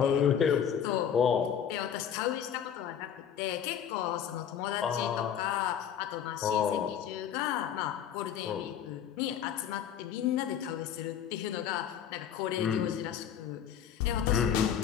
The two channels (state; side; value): quieter; right; 8.9 dB